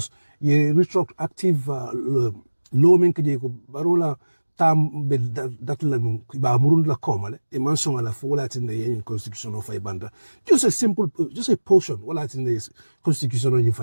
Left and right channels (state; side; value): inverted; both; correlation -1.00